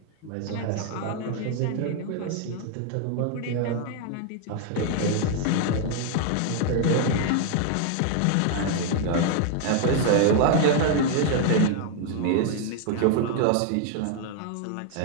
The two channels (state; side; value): different; both; correlation 0.00